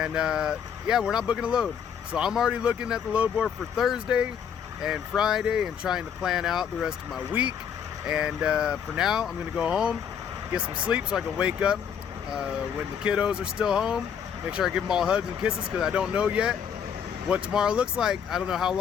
yeah, we're not booking a load. So I'm already looking at the load board for Thursday and Friday and trying to plan out the rest of my week. And for now, I'm gonna go home, get some sleep so I can wake up when the kiddos are still home. Make sure I give them all hugs and kisses, because I don't know yet what tomorrow looks like. I don't know how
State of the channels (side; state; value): right; quieter; 7.9 dB